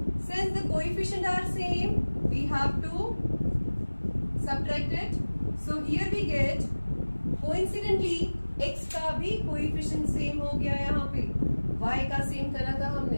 since the coefficient are same we have to subtract it. So here we get coincidentally x का भी कोएफिशिएंट सेम हो गया. यहाँ पे y का सेम करा था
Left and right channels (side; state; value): both; inverted; correlation -1.00